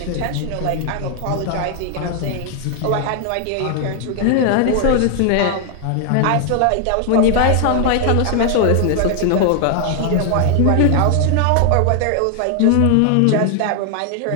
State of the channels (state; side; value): different; both; correlation 0.00